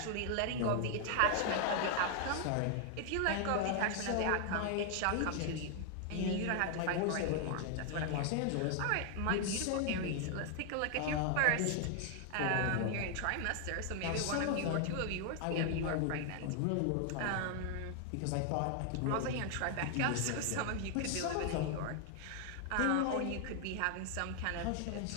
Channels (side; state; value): both; different; correlation 0.00